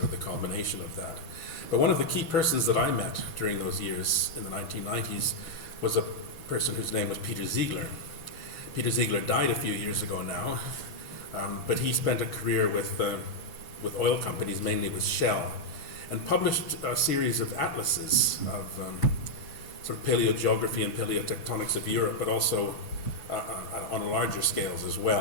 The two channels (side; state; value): right; late; 6.0 ms